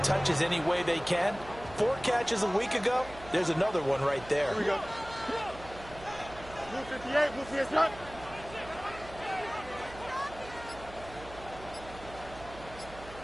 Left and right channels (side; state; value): right; noise; hum, 16 dB below the sound